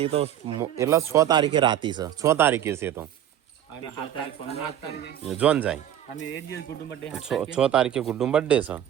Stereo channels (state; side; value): quieter; left; 10.9 dB